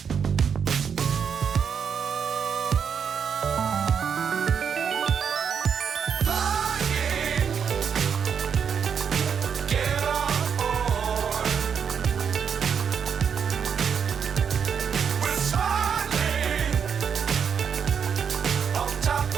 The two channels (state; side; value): quieter; left; 7.1 dB